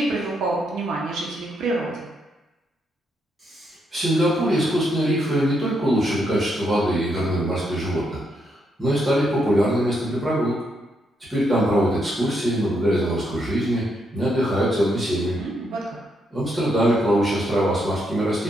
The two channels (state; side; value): normal; both; correlation 0.78